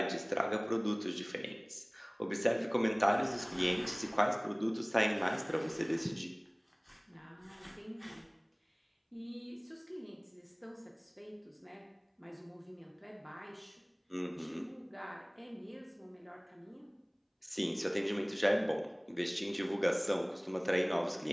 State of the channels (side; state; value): both; identical; correlation 1.00